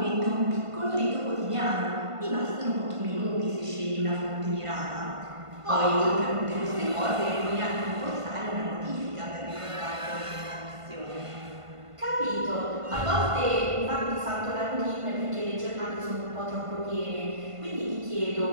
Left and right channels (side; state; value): left; late; 1.5 ms